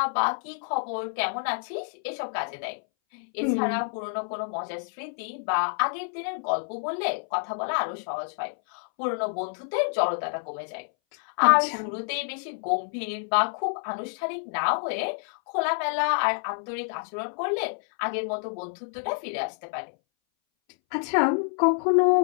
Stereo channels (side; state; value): right; silent; 59 dB below the other